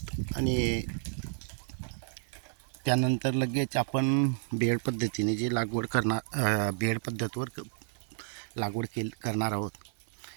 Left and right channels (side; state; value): left; silent; 57 dB below the other